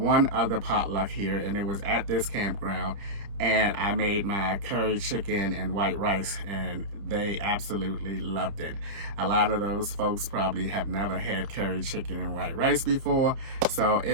other potluck here, and it was at this campground, and I made my curry chicken and white rice, and they absolutely loved it. A lot of those folks probably have never had curry chicken and white rice before, so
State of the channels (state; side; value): late; left; 30 ms